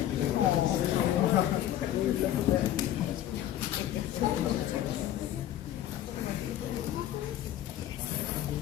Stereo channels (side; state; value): right; quieter; 12.3 dB